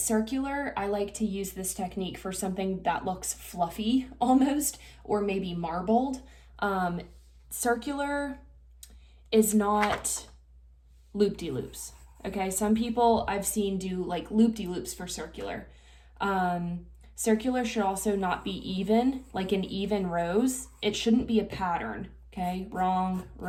I like to use this technique for something that looks fluffy almost, or maybe marbled. Circular is not loop-de-loops, okay? Some people I've seen do like loop-de-loops for circular. Circular should also not be even, like in even rows. It shouldn't be a pattern, okay? Wrong,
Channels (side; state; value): both; identical; correlation 1.00